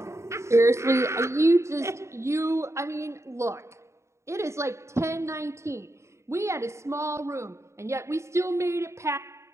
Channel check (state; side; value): late; left; 0.14 ms